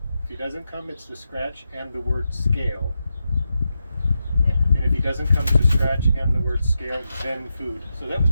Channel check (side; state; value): both; inverted; correlation -0.87